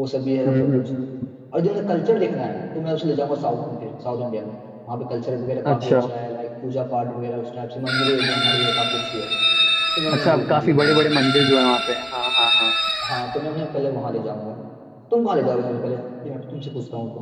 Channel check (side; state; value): both; identical; correlation 1.00